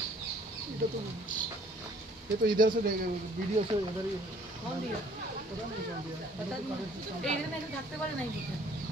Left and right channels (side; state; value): both; normal; correlation 0.57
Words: এটা তো ये तो इधर से वीडियो से उधर ही कौन दिया? पता नहीं कौन दिया। पता नहीं। এই এখানে এখানে থাকতে পারে নাই বুঝে।